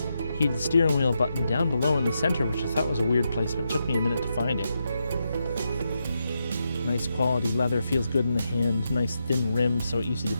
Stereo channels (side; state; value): both; inverted; correlation -0.84